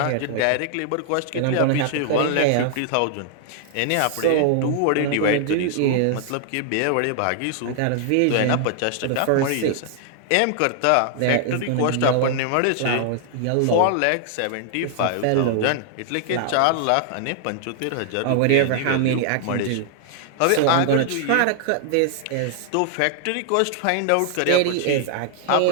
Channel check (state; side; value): different; both; correlation 0.00